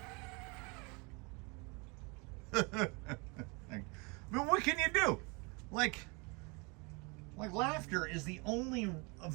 But what can you do? Like laughter is the only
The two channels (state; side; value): quieter; left; 29.7 dB